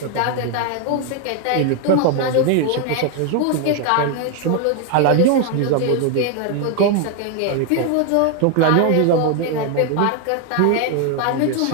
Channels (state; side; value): different; both; correlation 0.01